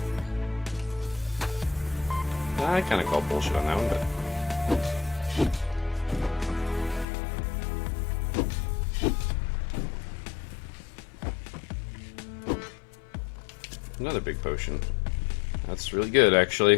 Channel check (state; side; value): drops out; right; at 7.1 s